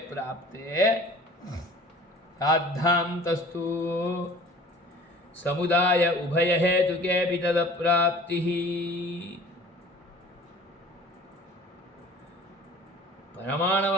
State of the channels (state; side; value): normal; both; correlation 0.46